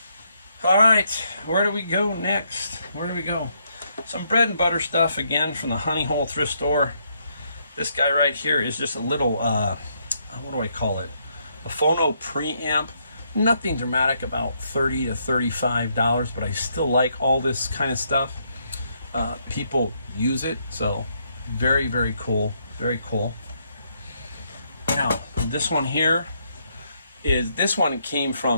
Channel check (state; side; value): inverted; both; correlation -0.74